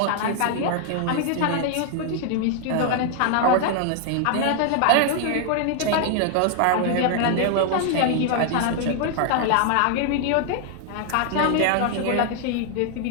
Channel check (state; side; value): different; both; correlation 0.00